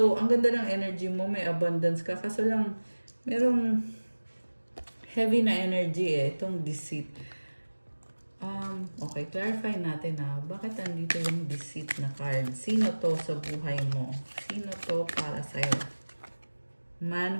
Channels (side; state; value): both; inverted; correlation -1.00